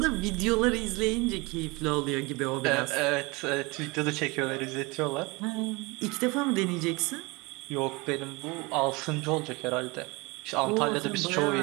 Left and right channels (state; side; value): quieter; left; 25.5 dB